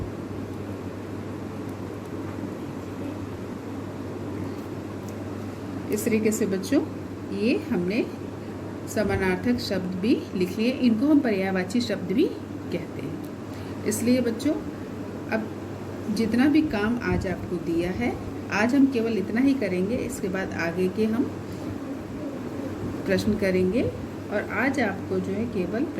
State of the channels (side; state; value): both; identical; correlation 1.00